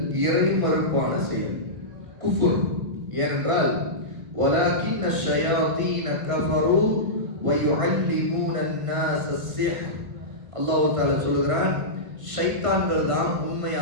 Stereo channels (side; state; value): left; late; 1.8 ms